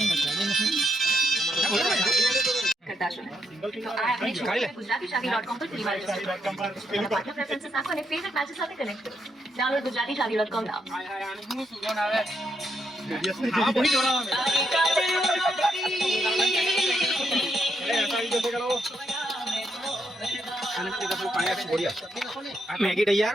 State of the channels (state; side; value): normal; both; correlation 0.78